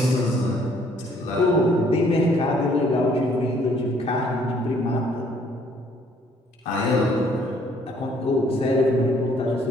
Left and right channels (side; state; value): both; normal; correlation 0.63